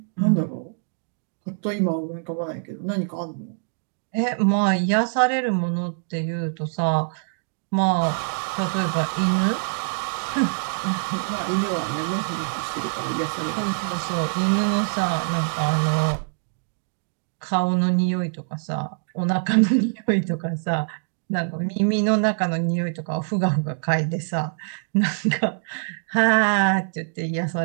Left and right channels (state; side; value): silent; left; digital silence